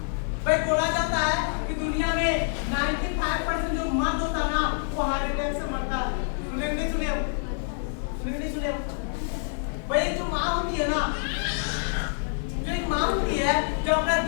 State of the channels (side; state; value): right; silent; digital silence